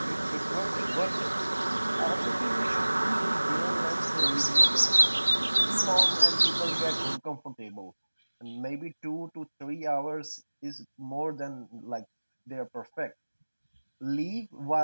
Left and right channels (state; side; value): inverted; both; correlation -1.00